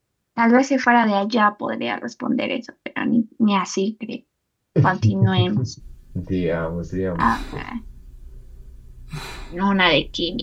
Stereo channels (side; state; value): both; identical; correlation 1.00